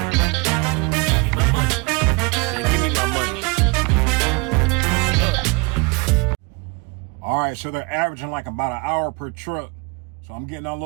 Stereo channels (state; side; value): quieter; left; 29.5 dB